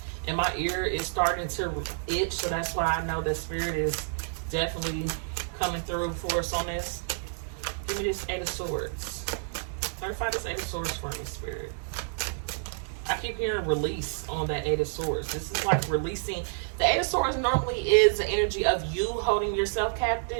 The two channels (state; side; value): silent; left; digital silence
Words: And my ear is starting to itch, so that's why I know that Spirit is definitely coming through for us on this. Give me this Eight of Swords. Clarify this Eight of Swords for me, Spirit. I keep hearing release on that Eight of Swords. This is like releasing. The Eight of Swords normally is the energy of you holding yourself